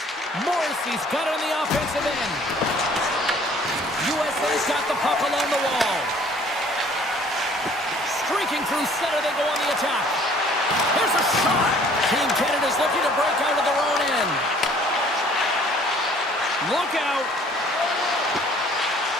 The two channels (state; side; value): normal; both; correlation 0.56